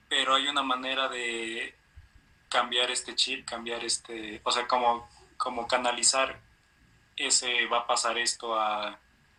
Pero hay una manera de cambiar este chip, o sea, como canalizar ese va a pasar esto a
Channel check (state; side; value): identical; both; correlation 1.00